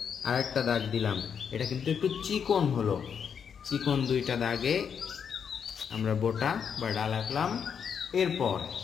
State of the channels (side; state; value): right; quieter; 7.3 dB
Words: আরেকটা দাগ দিলাম। এটা কিন্তু একটু চিকন হলো। চিকন দুইটা দাগে আমরা বোটা বা ডাল আঁকলাম। এরপর